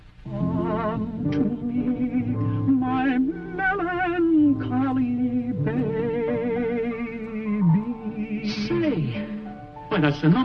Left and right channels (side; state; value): both; identical; correlation 1.00